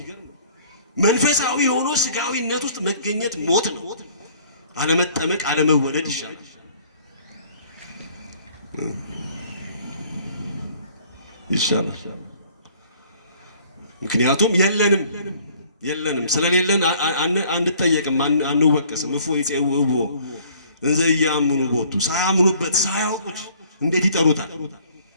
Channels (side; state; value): both; inverted; correlation -0.56